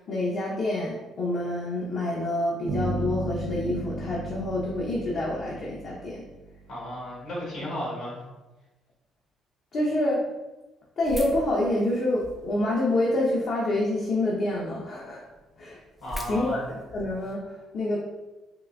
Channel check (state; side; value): normal; both; correlation 0.74